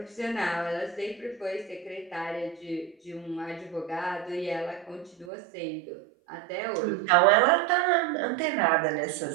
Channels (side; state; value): left; drops out; at 5.3 s